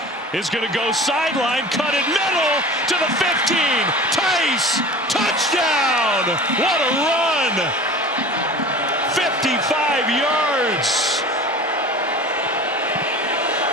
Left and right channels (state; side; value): normal; both; correlation 0.38